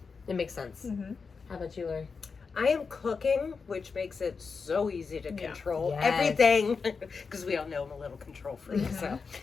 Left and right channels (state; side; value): quieter; right; 5.1 dB